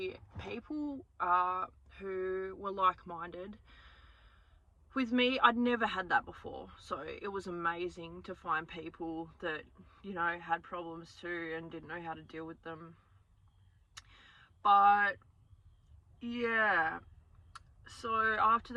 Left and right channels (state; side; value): identical; both; correlation 1.00